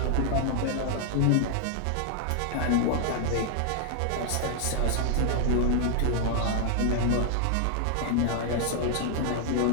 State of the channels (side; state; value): both; different; correlation 0.00